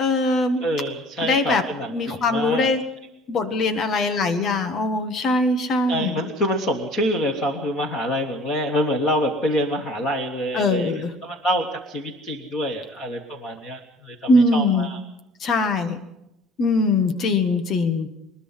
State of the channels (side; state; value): both; normal; correlation 0.50